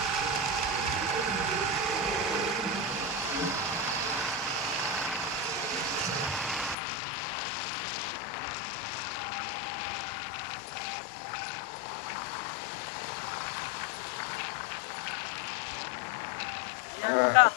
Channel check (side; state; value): right; drops out; at 6.8 s